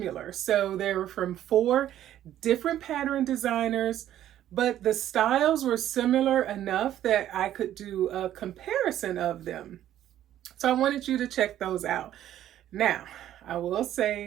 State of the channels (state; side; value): quieter; left; 12.0 dB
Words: So they were from four different pattern designers, but the styles were similar enough that I could do a comparison of them. So I wanted you to check those out. Now, I will